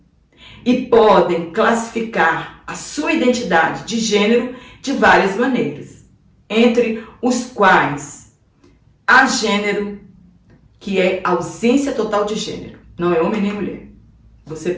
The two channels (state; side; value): identical; both; correlation 1.00